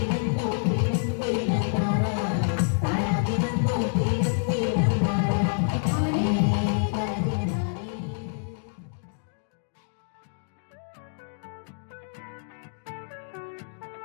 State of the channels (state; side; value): silent; right; digital silence